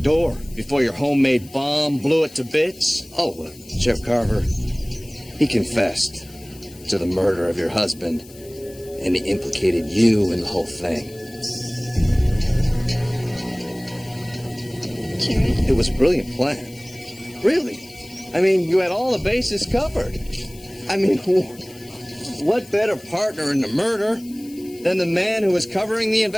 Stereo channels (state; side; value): noise; left; hiss, 22 dB below the sound